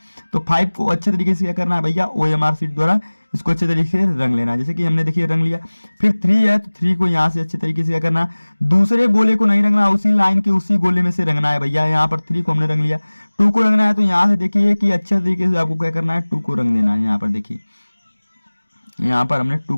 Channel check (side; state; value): both; inverted; correlation -1.00